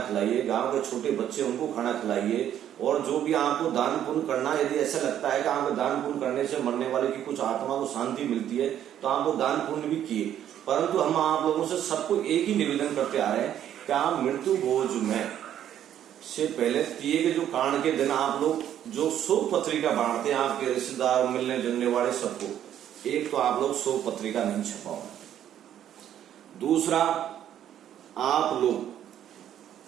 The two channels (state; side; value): quieter; left; 10.6 dB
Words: खिलाइए, गांव के छोटे बच्चे उनको खाना खिलाइए, और जो भी आपको दान पुण्य करना, यदि ऐसा लगता है कि आपको दान पुण्य करने से मरने वाले की कुछ आत्मा को शांति मिलती है तो आपको दान पुण्य भी किए। परंतु हम आप लोगों से सबको एक ही निवेदन करते आ रहे हैं कि आप मृत्यु भोज में से पहले दिए के जो कांड के दिन आप लोग जो शोक पत्रिका बांटते हैं आपके रिश्तेदार, मिलने जुलने वाले सबको, एक तो आप लोग शोक पत्रिका नहीं छपाओ, दूसरा आप लोग